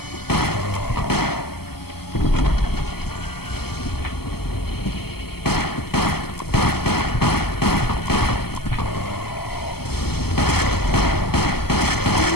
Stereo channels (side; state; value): right; late; 0.96 ms